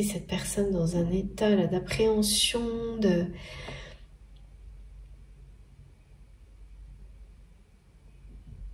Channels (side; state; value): both; identical; correlation 1.00